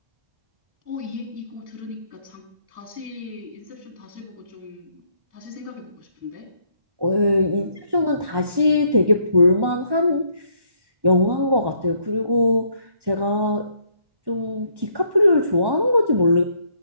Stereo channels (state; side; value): late; left; 1.1 ms